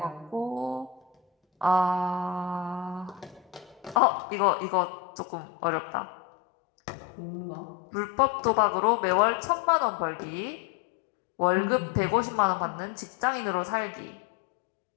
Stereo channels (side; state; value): right; drops out; at 4.0 s